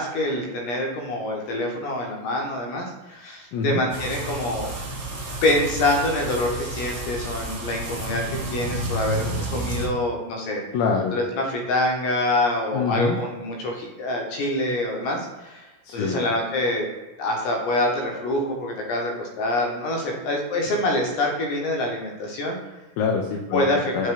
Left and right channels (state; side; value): late; right; 16 ms